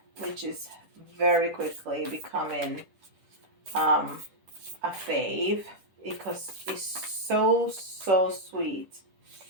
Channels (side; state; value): left; late; 10 ms